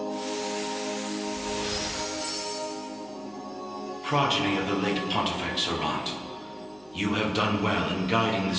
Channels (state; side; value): noise; right; hum, 28 dB below the sound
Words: Progeny of the late Pontifex Errant, you have done well in guiding the